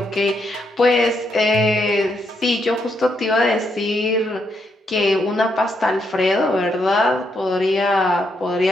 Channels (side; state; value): both; normal; correlation 0.78